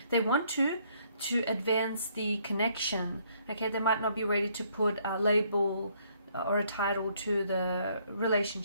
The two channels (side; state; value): both; inverted; correlation -0.67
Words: they want to advance the connection. Okay, they might not be ready to put a label or a title to the